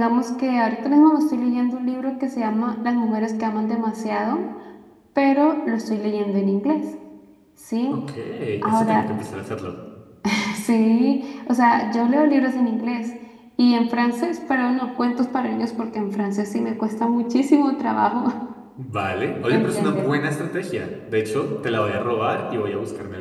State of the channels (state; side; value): identical; both; correlation 1.00